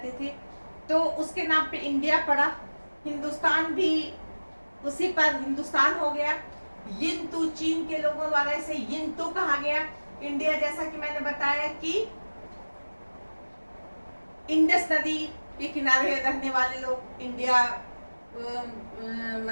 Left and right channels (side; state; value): both; inverted; correlation -1.00